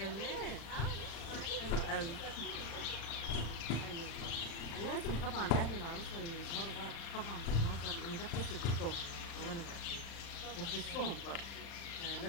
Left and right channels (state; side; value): late; right; 35 ms